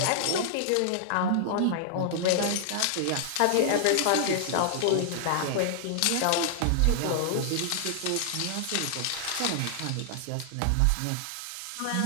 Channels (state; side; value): different; both; correlation -0.01